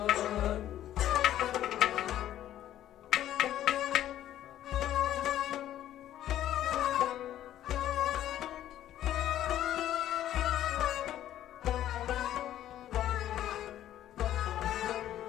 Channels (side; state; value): right; quieter; 12.2 dB